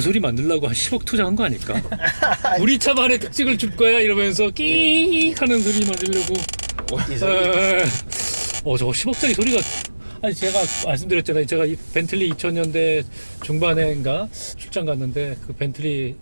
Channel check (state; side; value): inverted; both; correlation -1.00